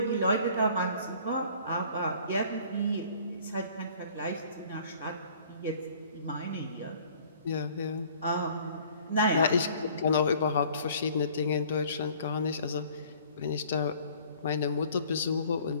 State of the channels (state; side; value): inverted; both; correlation -0.53